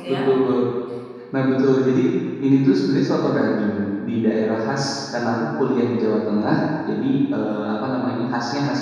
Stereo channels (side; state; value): both; identical; correlation 1.00